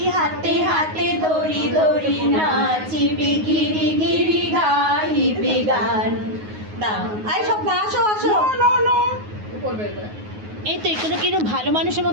হাতে হাতে ধরি ধরি নাচিবি গিরি গিরি গাইবি গান। দাও আই সব না আসো আসো। করবে এবার। এই তো এখানে কিরকম ভালো মানুষের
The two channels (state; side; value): late; left; 9.5 ms